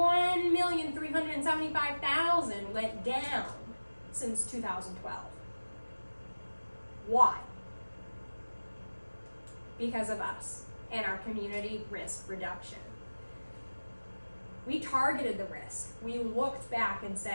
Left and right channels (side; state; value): both; inverted; correlation -1.00